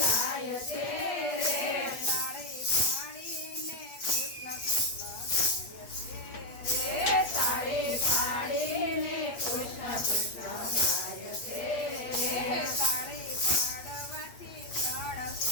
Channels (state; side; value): late; right; 8.4 ms